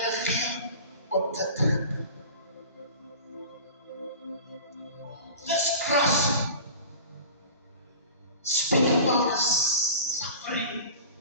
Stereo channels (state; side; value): inverted; both; correlation -0.38